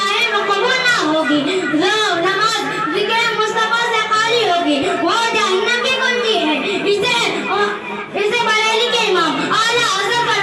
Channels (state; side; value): identical; both; correlation 1.00